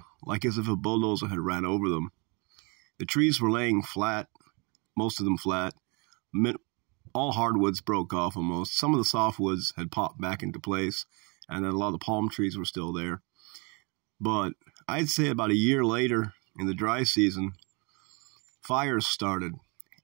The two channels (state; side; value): quieter; left; 30.8 dB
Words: like as if a bulldozer had ran over them. The trees were laying flat, most of them flat. All hardwoods broke off almost. Some of the softwoods had popped back into place, and then a lot of the palm trees were still there. But I'd say about a year later, in the dry season, fires started,